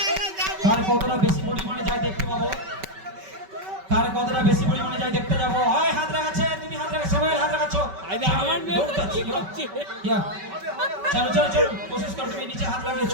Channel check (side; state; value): left; late; 5.2 ms